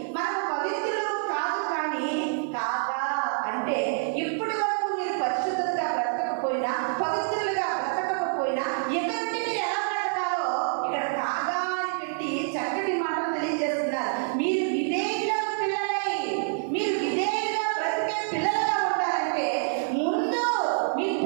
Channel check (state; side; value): silent; left; 60 dB below the other